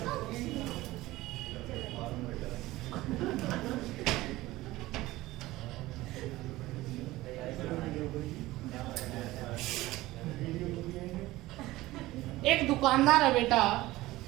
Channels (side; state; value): left; quieter; 18.0 dB